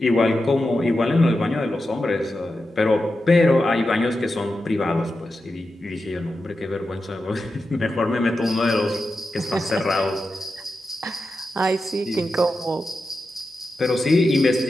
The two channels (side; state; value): both; normal; correlation 0.90